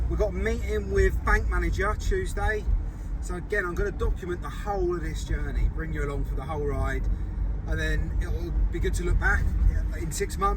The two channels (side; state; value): both; identical; correlation 1.00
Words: We've got a meeting with bank manager Tuesday. So again, I'm going to document the whole of this journey, bring you along for the whole ride, and then it'll be good to look back in 6